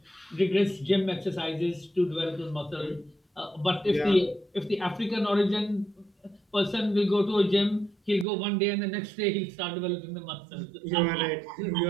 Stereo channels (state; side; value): drops out; left; at 8.2 s